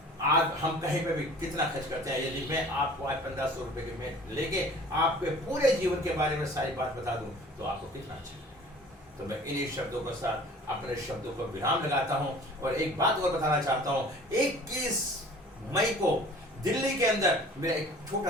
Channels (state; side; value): normal; both; correlation 0.47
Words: आज हम कहीं पे भी कितना खर्च करते हैं। यदि मैं आपको आज 1500 रुपये के में लेके आपके पूरे जीवन के बारे में सारी बात बता दूं तो आपको कितना अच्छा है। तो मैं इन्हीं शब्दों के साथ अपने शब्दों को विराम लगाता हूं और एक बात और बताना चाहता हूं। 21 मई को दिल्ली के अंदर मेरा एक